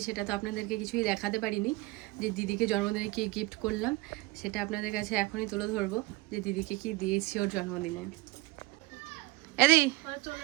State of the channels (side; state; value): left; quieter; 20.7 dB